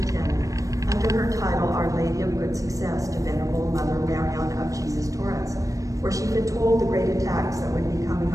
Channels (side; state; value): left; late; 0.16 ms